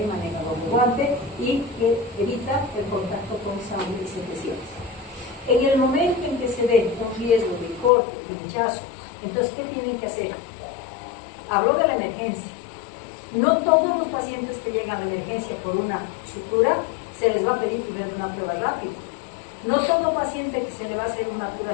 maneja doble guante y que evita el contacto con sangre y secreciones? En el momento en que se ve un riesgo de corte, pinchazo, entonces ¿qué tienen que hacer? Hablo de la emergencia. No todos los pacientes que llegan a la emergencia por una sutura se les va a pedir primero una prueba rápida. No todo paciente que se le va a hacer una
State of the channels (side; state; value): right; drops out; at 7.9 s